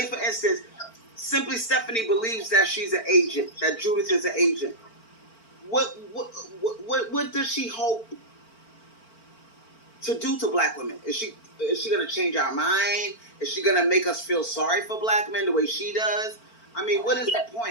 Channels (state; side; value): late; right; 4.4 ms